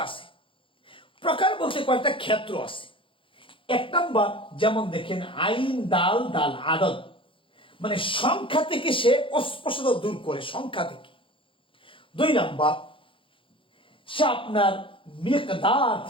আছে। প্রকার বলতে কয়েকটা ক্ষেত্র আছে। এক নাম্বার, যেমন দেখেন আইন দাল দাল আদত, মানে সংখ্যা থেকে সে অস্পষ্টতা দূর করে, সংখ্যা থেকে। দুই নাম্বার, সে আপনার মিকদার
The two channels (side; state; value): right; late; 0.25 ms